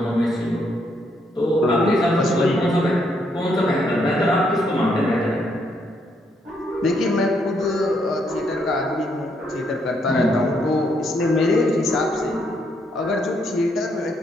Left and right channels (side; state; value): both; normal; correlation 0.74